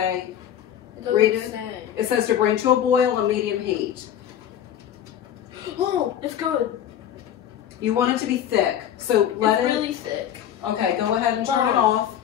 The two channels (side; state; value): right; quieter; 10.2 dB